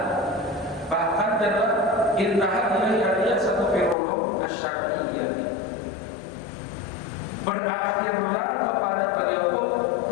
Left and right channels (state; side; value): drops out; right; at 4.0 s